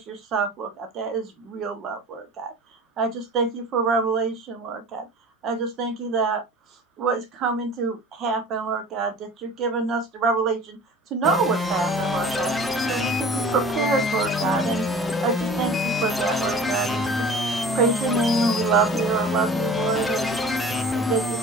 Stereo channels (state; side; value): normal; both; correlation 0.43